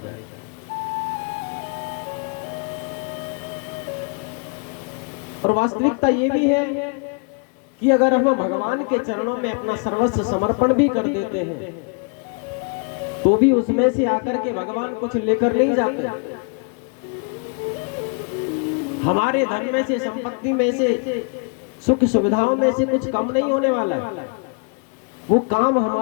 और वास्तविकता ये भी है कि अगर हम भगवान के चरणों में अपना सर्वस्व समर्पण भी कर देते हैं तो भी उसमें से आकर के भगवान कुछ लेकर नहीं जाते। हमारे धन में से, संपत्ति में से, सुख सुविधाओं में से कुछ कम नहीं होने वाला, वो काम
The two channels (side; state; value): right; quieter; 36.4 dB